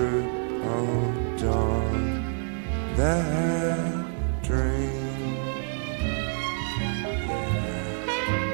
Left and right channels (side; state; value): left; silent; 57 dB below the other